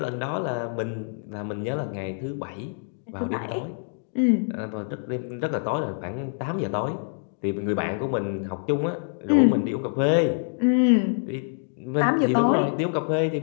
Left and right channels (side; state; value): right; silent; digital silence